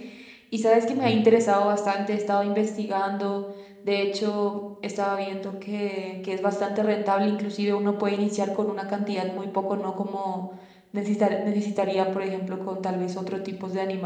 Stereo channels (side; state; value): both; identical; correlation 1.00